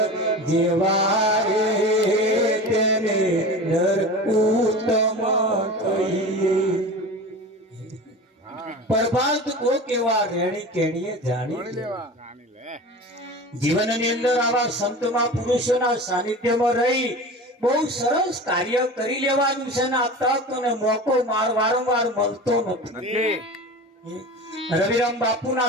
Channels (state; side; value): normal; both; correlation 0.33